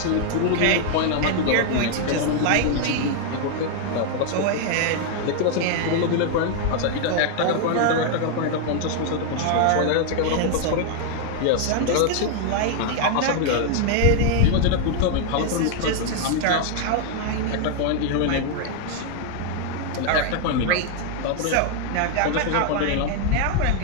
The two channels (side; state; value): both; different; correlation 0.00